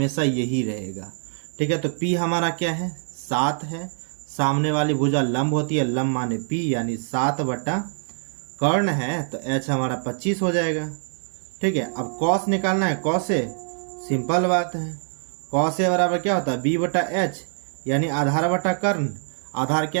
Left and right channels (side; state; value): left; silent; digital silence